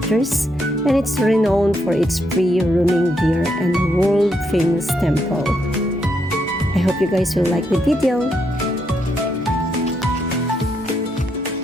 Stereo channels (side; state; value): both; normal; correlation 0.78